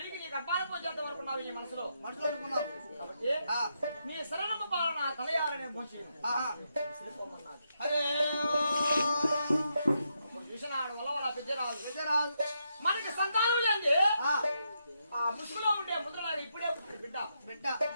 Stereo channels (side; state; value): both; inverted; correlation -0.81